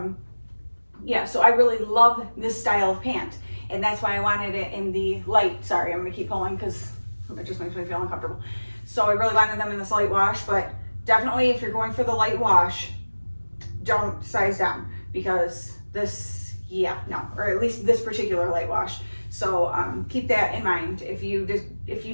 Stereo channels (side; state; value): both; inverted; correlation -1.00